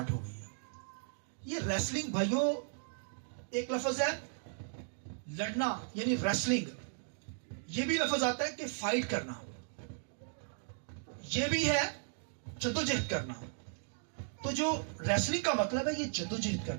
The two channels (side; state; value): left; silent; digital silence